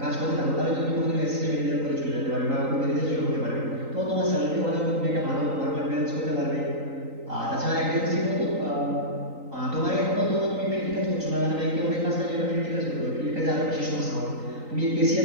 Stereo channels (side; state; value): left; late; 3.9 ms